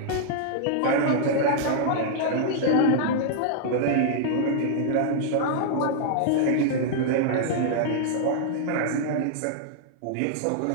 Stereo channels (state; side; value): different; both; correlation -0.01